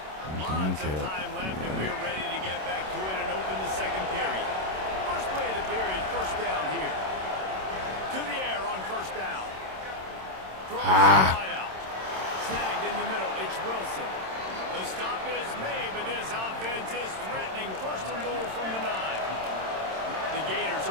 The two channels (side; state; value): left; late; 26 ms